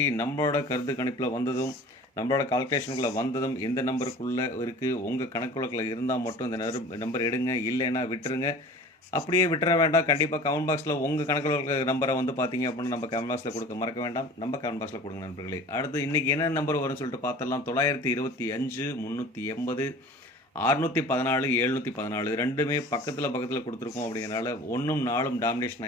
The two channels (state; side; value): normal; both; correlation 0.42